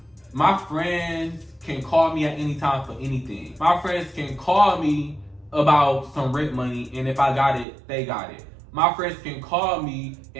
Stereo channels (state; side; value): drops out; left; at 7.7 s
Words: my friends can call me at any time for anything. My friends can call me about some rent money, and if I got it, they got it. My friends can call me